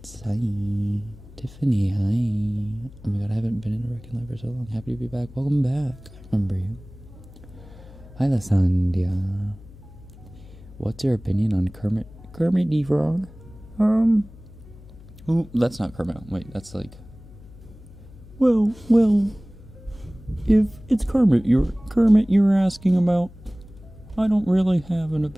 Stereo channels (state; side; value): noise; left; hum, 20 dB below the sound